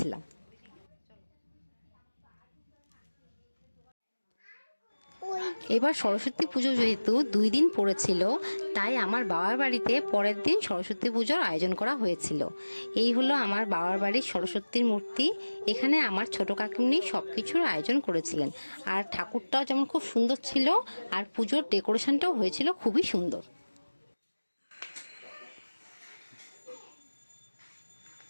এবার সরস্বতী পুজো যেহেতু 2 দিন পড়েছিল, তাই আমার বাবার বাড়িতে পরের দিন সরস্বতী পুজোর আয়োজন করা হয়েছিল। এই হলো আমার বাবার বাড়ির সরস্বতীর মূর্তি। এখানে আমার ছোট কাকিমনি সব কিছুর আয়োজন করেছিলেন। আর ঠাকুরটাও যেমন খুব সুন্দর ছিল, আর পুজোর ডেকোরেশনটাও হয়েছিল খুবই সুন্দর।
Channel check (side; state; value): both; inverted; correlation -1.00